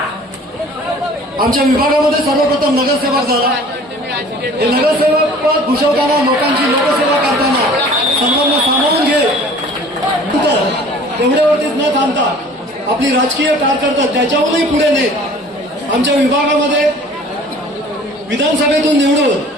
आमच्या विभागामध्ये सर्वप्रथम नगरसेवक झाला. हे नगरसेवक पद भूषवताना लोकांची लोकसेवा करताना सर्वांना सामावून घे एवढ्यावरतीच न थांबता आपली राजकीय कारकीर्द त्याच्याहूनही पुढे नेत आमच्या विभागामध्ये विधानसभेतून निवडून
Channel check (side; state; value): both; normal; correlation 0.48